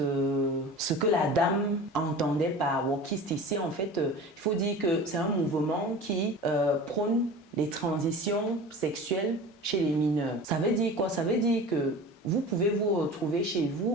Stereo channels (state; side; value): normal; both; correlation 0.36